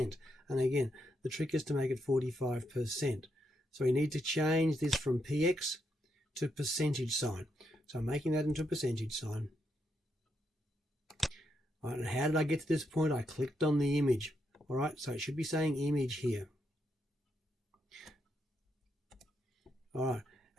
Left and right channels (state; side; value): normal; both; correlation 0.80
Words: And again, the trick is to make it 45%. So we need to change this from px to percentage sign. So I'm making that into a percentage sign. All right, and how did I get to this point? I clicked on the image. All right, so it should be saying image here. All right,